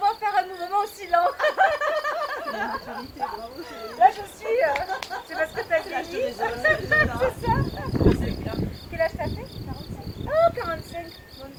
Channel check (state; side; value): identical; both; correlation 1.00